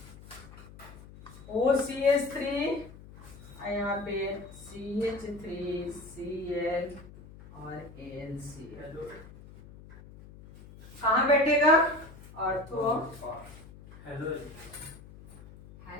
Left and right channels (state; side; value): noise; left; hum, 18 dB below the sound